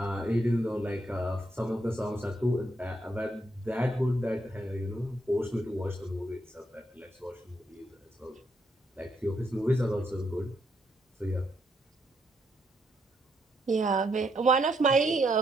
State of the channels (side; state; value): both; normal; correlation 0.77